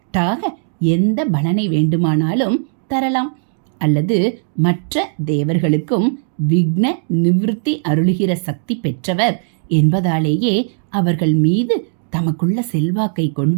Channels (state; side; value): silent; left; digital silence